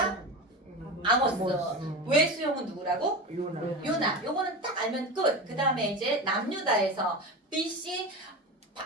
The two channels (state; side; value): normal; both; correlation 0.25